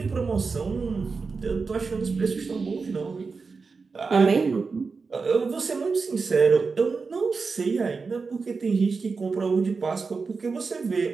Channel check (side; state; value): left; quieter; 4.6 dB